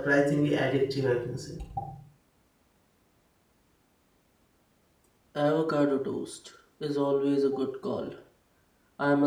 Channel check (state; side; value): identical; both; correlation 1.00